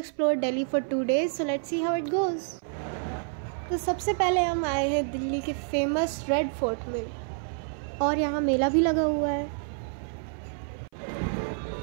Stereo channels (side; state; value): left; silent; 57 dB below the other